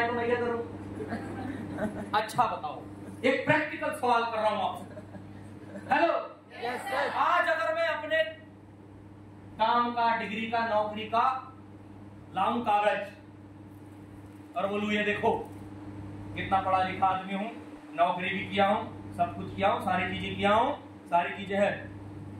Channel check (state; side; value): identical; both; correlation 1.00